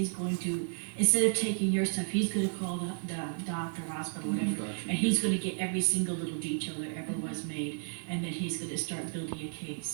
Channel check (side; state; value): left; silent; digital silence